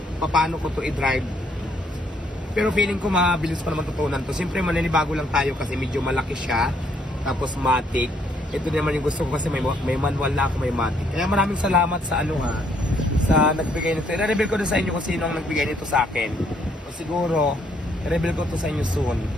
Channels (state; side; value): normal; both; correlation 0.69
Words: paano ko to i-drive. Pero feeling ko mabilis pa naman tutunan to. Siyempre maninibago lang tayo kasi medyo malaki siya. Tapos Matic. Ito naman yung gusto ko kasi may manual na ako, may Matic. Kaya maraming salamat sa sa nagbigay nito. I-reveal ko din sa inyo kung sino ang nagbigay nito sa akin. O siguro, i-reveal ko to sa inyo soon.